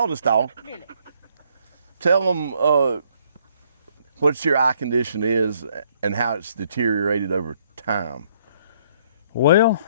this dog. Really? Tell them what your eye condition is and how it's deteriorated over time. Well,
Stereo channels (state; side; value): inverted; both; correlation -0.67